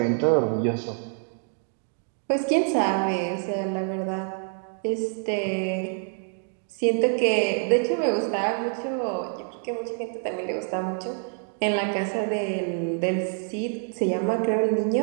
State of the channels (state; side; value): silent; left; 59 dB below the other